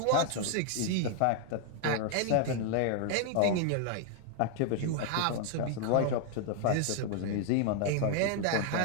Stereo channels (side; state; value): both; different; correlation 0.00